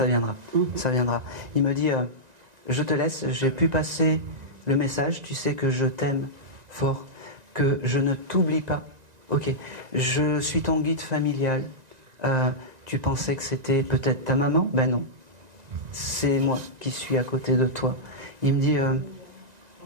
viendra. Ça viendra. Il me dit, je te laisse, j'ai pu passer le message, tu sais que je t'aime fort, que je ne t'oublie pas. Ok, je suis ton guide familial. Tu pensais que c'était peut-être ta maman? Ben non, c'est moi qui suis à côté de toi. Il me dit,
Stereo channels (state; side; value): late; left; 1.9 ms